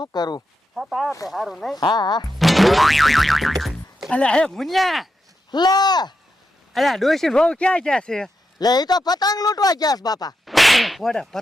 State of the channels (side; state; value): both; normal; correlation 0.86